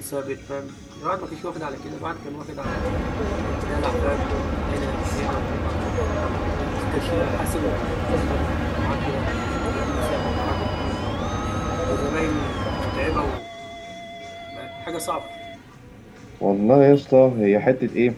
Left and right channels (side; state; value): both; identical; correlation 1.00